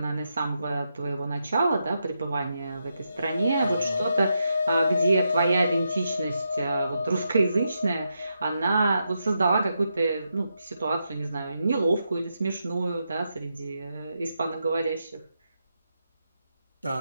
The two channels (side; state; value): both; inverted; correlation -0.84